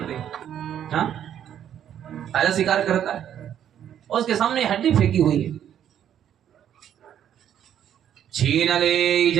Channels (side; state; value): left; quieter; 9.9 dB